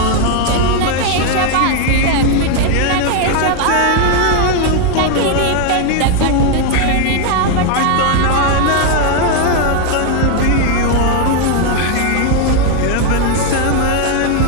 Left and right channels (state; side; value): different; both; correlation 0.01